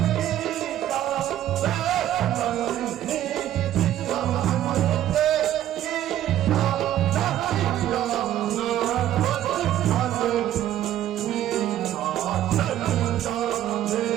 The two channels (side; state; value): left; quieter; 12.2 dB